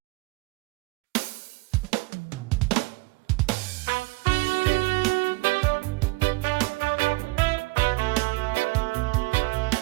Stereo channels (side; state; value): left; quieter; 24.4 dB